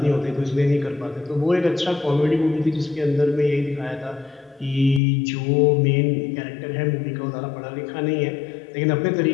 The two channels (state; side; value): drops out; right; at 5.0 s